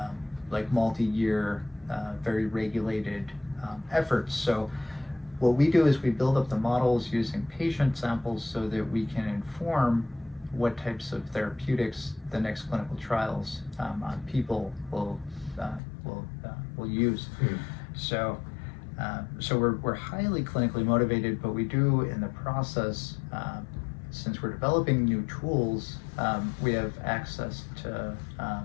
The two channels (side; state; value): right; drops out; at 15.8 s